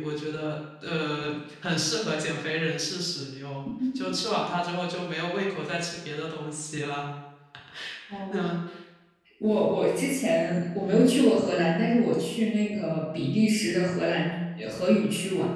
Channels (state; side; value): identical; both; correlation 1.00